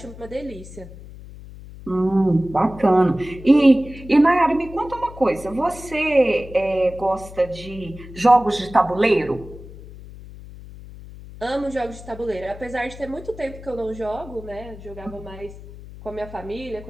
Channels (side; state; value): left; noise; hum, 16 dB below the sound